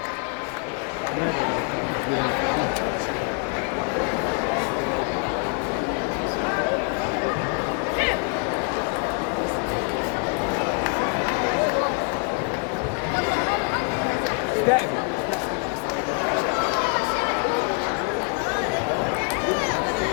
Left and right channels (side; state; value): right; quieter; 38.3 dB